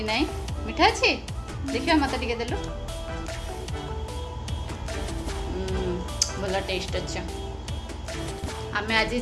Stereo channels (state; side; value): identical; both; correlation 1.00